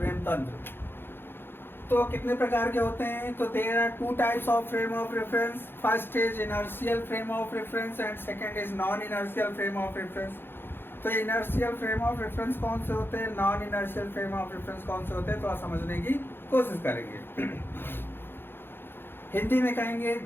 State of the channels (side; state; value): right; late; 0.10 ms